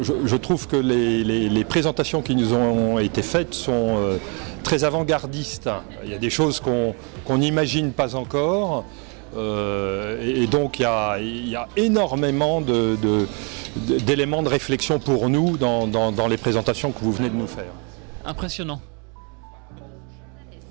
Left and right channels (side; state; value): left; quieter; 35.3 dB